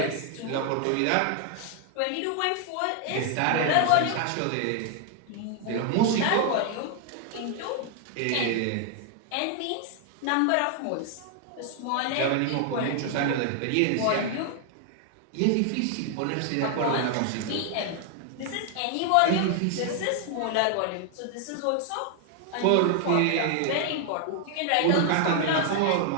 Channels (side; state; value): both; different; correlation 0.00